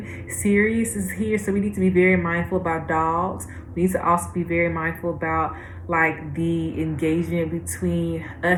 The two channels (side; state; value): both; identical; correlation 1.00